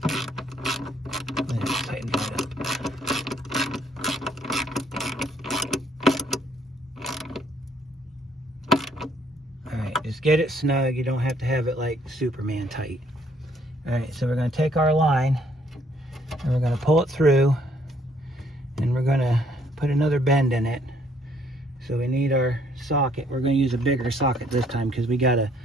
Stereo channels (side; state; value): both; normal; correlation 0.65